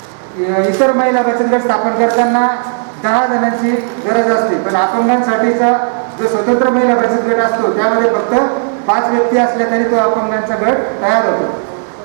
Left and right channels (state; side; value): silent; left; digital silence